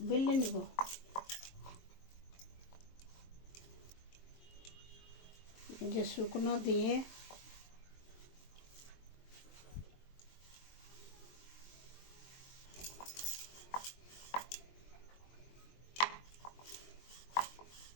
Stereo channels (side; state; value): right; late; 22 ms